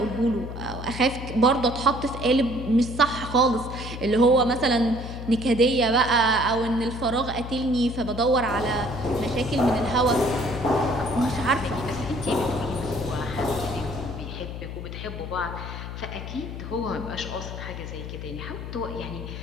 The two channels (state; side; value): noise; left; hum, 8 dB below the sound